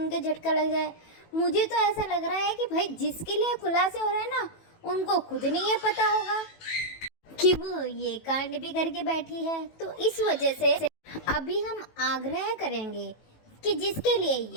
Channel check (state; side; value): late; right; 18 ms